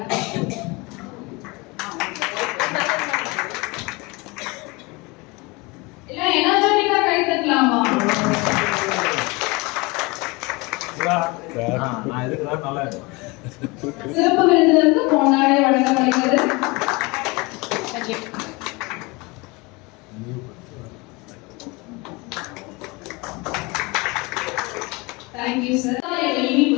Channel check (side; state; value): right; quieter; 25.6 dB